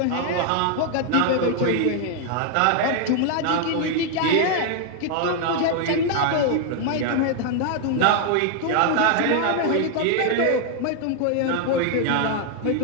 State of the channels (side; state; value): both; different; correlation 0.00